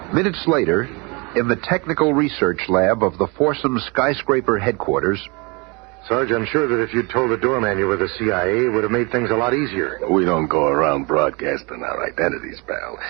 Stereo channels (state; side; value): quieter; left; 29.2 dB